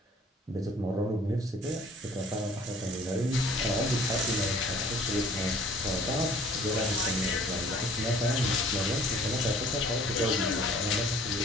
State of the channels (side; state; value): both; normal; correlation 0.53